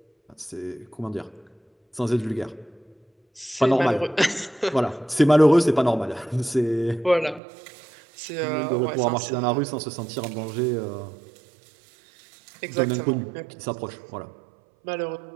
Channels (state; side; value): drops out; left; at 7.4 s